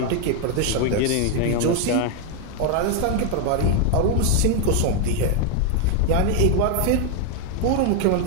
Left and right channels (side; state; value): both; different; correlation 0.00